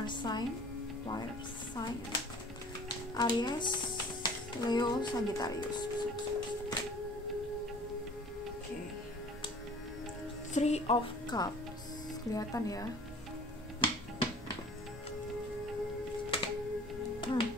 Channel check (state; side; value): normal; both; correlation 0.48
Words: sign Aries, Leo, Sagittarius. Oke, Three of Cups, kelihatan ya.